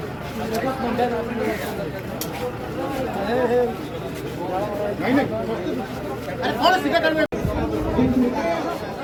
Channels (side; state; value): both; identical; correlation 1.00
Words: नहीं नहीं अरे थोड़ा सीधा कर